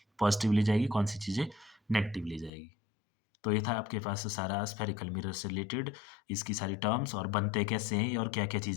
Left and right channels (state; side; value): drops out; right; at 2.5 s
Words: पॉजिटिव ली जाएगी, कौन सी चीज़ें नेगेटिव ली जाएगी। तो ये था आपके पास सारा स्फेरिकल मिरर से रिलेटेड, इसकी सारी टर्म्स और बनते कैसे हैं और क्या-क्या